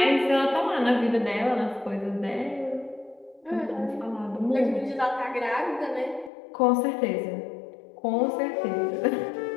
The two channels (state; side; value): drops out; right; at 6.3 s